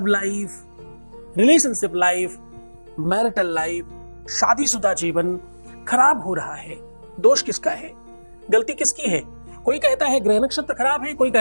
life, relationship life, marital life, शादीशुदा जीवन खराब हो रहा है, दोष किसका है? गलती किसकी है? कोई कहता है ग्रह नक्षत्र खराब है, कोई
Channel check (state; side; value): inverted; both; correlation -1.00